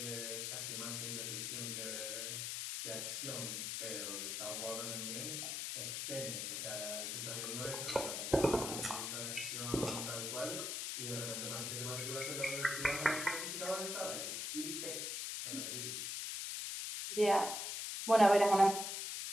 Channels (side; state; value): left; noise; hiss, 3 dB below the sound